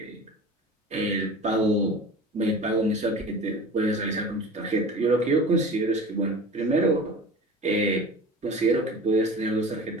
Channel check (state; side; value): normal; both; correlation 0.37